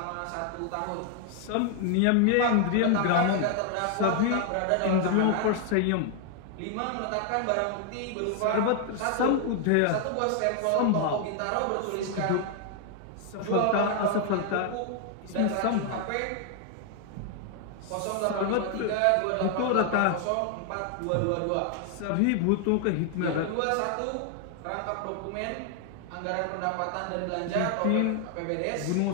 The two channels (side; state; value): both; different; correlation 0.00